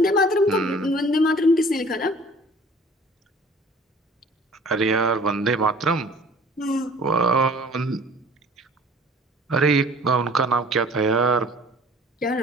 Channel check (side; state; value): both; normal; correlation 0.50